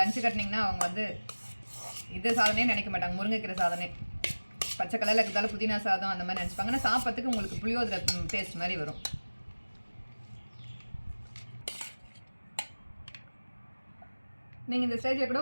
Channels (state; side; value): inverted; both; correlation -1.00